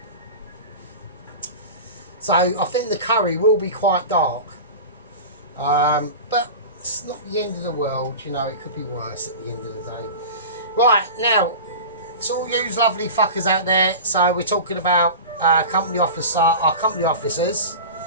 I think the curry will be quite dark, but it's not the end of the world, you know, it could be worse at the end of the day. Right, now, it's all you lovely fuckers out there, so we're talking about our company officers,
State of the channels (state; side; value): inverted; both; correlation -0.31